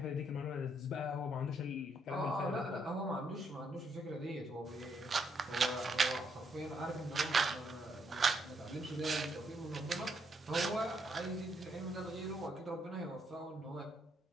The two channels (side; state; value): both; normal; correlation 0.75